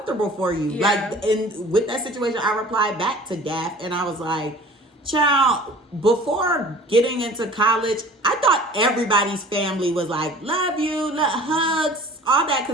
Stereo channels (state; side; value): normal; both; correlation 0.46